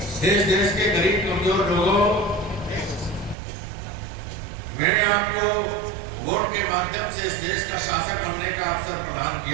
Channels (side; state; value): left; drops out; at 3.4 s